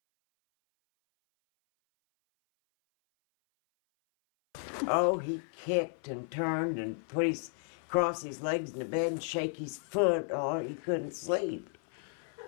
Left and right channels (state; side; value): silent; right; 55 dB below the other